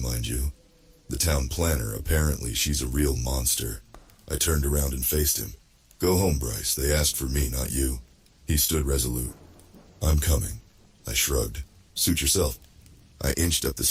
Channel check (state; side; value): identical; both; correlation 1.00